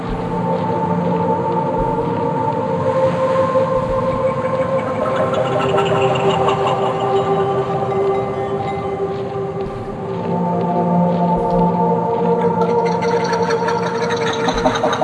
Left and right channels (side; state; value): both; identical; correlation 1.00